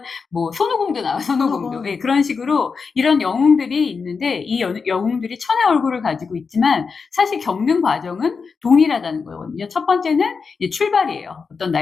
뭐 손오공도 나와요. 손오공도. 예, 그런 식으로 이런 영웅들이 있는데 이 영웅들이 천의 얼굴을 가지고 있지만 사실 겪는 과정은 동일하다는 거거든요. 첫 번째는 이제 출발이에요. 어떤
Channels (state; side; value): quieter; right; 5.2 dB